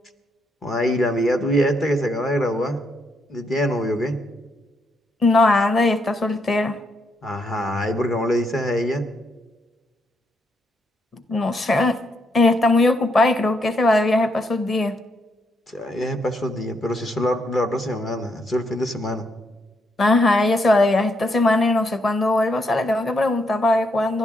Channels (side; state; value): both; normal; correlation 0.77